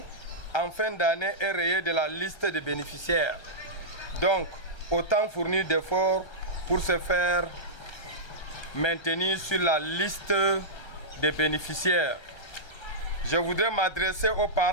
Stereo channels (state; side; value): late; right; 1.3 ms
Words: en fin d'année est rayé de la liste des bénéficiaires. Donc, autant fournir d'efforts pour se faire maintenir sur la liste des bénéficiaires. Je voudrais m'adresser aux